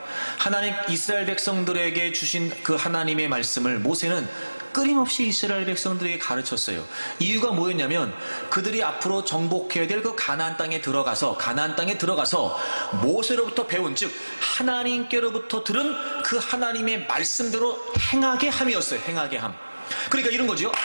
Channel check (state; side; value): inverted; both; correlation -1.00